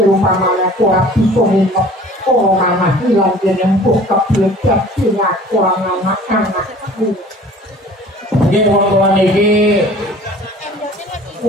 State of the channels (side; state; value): both; normal; correlation 0.47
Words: umpamane aku ora bisa minta oh anak hilang jeneng buka belajar sehingga aku anak-anakku. Nggih wong-wong iki